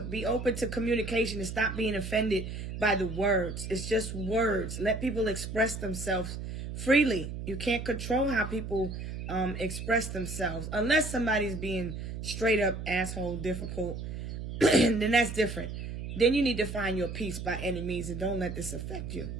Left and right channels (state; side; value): noise; right; hum, 7 dB below the sound